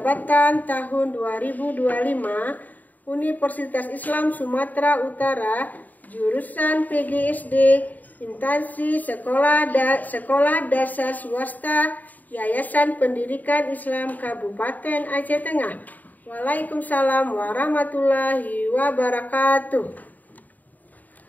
tahun 2025, Universitas Islam Sumatera Utara, jurusan PGSD, instansi sekolah dasar swasta, Yayasan Pendidikan Islam Kabupaten Aceh Tengah. Waalaikumsalam warahmatullahi wabarakatuh.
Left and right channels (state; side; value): late; right; 0.081 ms